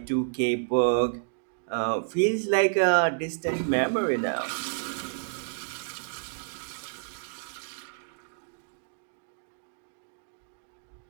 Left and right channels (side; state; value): left; silent; digital silence